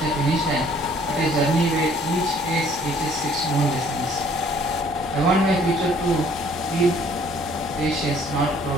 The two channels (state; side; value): normal; both; correlation 0.59